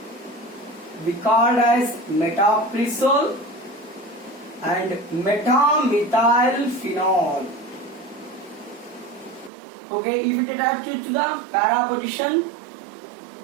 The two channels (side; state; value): left; drops out; at 9.5 s